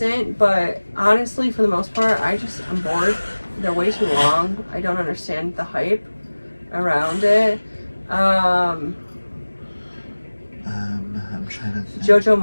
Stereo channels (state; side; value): inverted; both; correlation -1.00